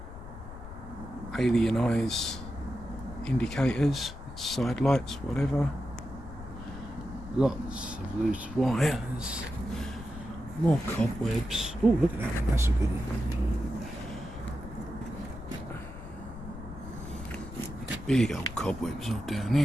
alien eyes indicators, side lights, whatever. Lots of loose wires. More cobwebs. Oh, look at that one, that's a good one. Big old cobwebs all down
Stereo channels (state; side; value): noise; left; rumble, 13 dB below the sound